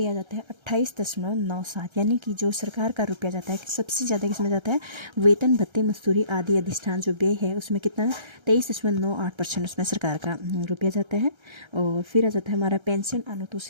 आ जाता है 28.97। यानी कि जो सरकार का रुपया जाता है सबसे ज़्यादा किसमें जाता है, वेतन भत्ते मजदूरी आदि अधिष्ठान जो व्यय है उसमें कितना 23.98% उसमें सरकार का रुपया जाता है। और फिर आ जाता है हमारा पेंशन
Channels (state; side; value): late; left; 1.3 ms